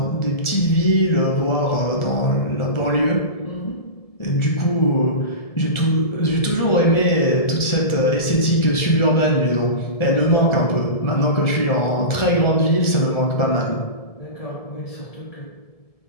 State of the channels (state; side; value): late; right; 1.7 ms